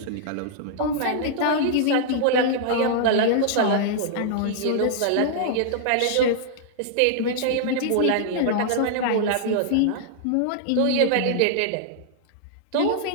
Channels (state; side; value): different; both; correlation -0.01